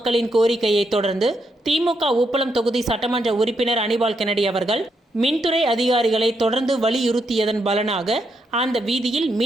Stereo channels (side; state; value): both; normal; correlation 0.80